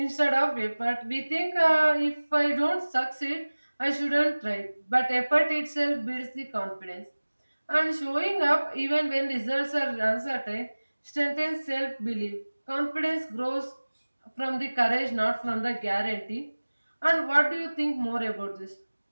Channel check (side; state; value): both; inverted; correlation -1.00